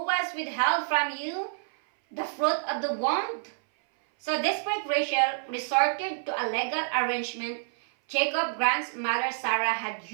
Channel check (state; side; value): silent; left; 58 dB below the other